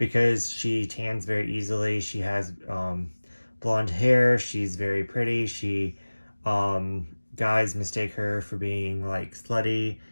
she tans very easily. She has blonde hair. She's very pretty. Um, guys mistake her for being like slutty,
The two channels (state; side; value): inverted; both; correlation -1.00